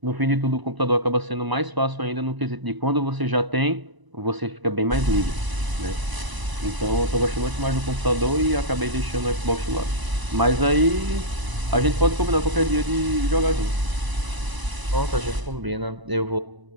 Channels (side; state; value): left; late; 1.0 ms